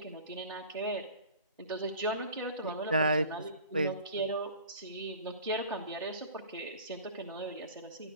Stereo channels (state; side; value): inverted; both; correlation -0.43